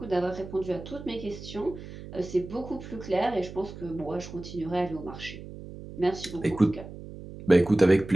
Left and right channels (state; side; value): noise; right; hum, 13 dB below the sound